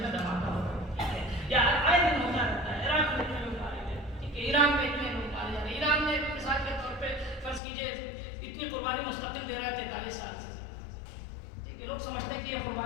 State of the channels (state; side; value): drops out; right; at 7.6 s